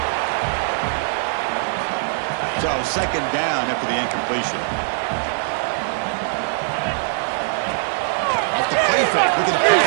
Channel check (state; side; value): silent; left; digital silence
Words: So second down after the incompletion. Off the play fake. Look at the